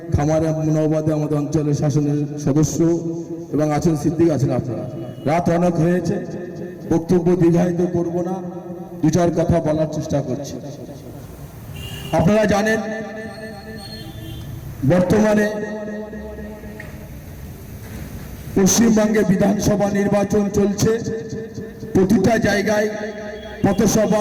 খামারে মুনাবাদে আমাদের অঞ্চলের শাসনের সদস্য, এবং আছেন সিদ্দিক আছেন। আপনারা রাত অনেক হয়েছে, বক্তব্য দীর্ঘায়িত করব না, দু চার কথা বলার চেষ্টা করছি। আপনারা জানেন বর্তমানে পশ্চিমবঙ্গে বিধানসভা নির্বাচন চলছে। প্রতিটা জায়গায়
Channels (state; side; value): identical; both; correlation 1.00